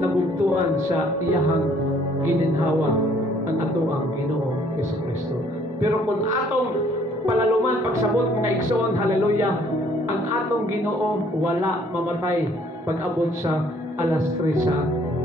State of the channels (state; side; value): normal; both; correlation 0.61